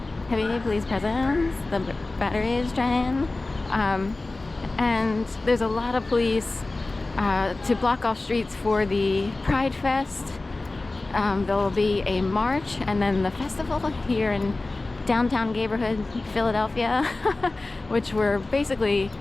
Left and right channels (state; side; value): quieter; right; 3.2 dB